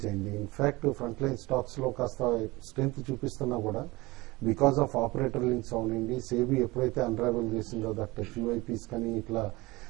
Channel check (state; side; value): quieter; left; 21.8 dB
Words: అయింది. ఇన్ఫాక్ట్ ఫ్రంట్ లైన్ స్టాక్స్ లో కాస్త స్ట్రెంత్ చూపిస్తున్నా కూడా బికాస్ ఆఫ్ ఆపరేటర్ లింక్స్ అవునండి, సేబీ ఎప్పుడైతే అన్రావెల్ చేసిందో దట్ క్యూఐపీస్ కానీ ఇట్లా